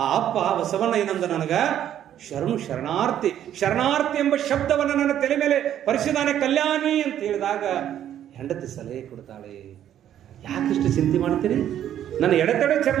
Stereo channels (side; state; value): left; quieter; 10.8 dB